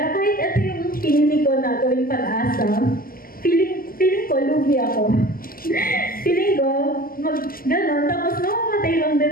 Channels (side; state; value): right; late; 0.42 ms